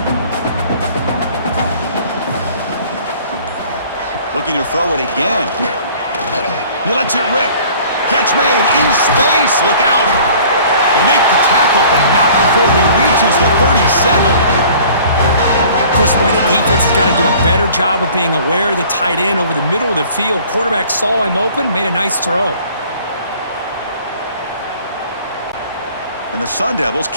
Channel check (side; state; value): both; inverted; correlation -0.50